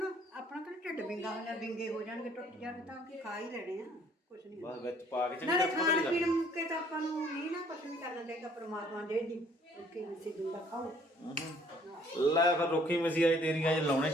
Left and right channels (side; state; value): both; normal; correlation 0.60